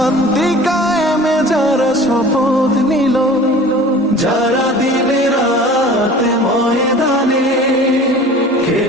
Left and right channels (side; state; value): both; normal; correlation 0.43